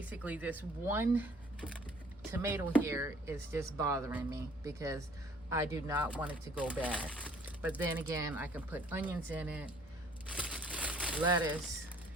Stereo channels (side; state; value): both; normal; correlation 0.57